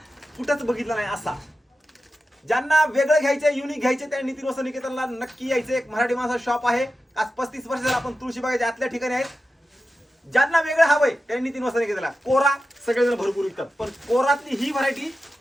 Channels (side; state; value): both; normal; correlation 0.92